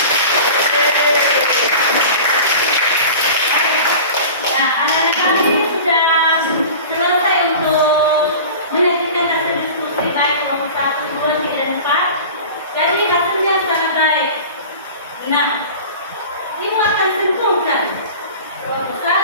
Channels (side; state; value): both; inverted; correlation -0.37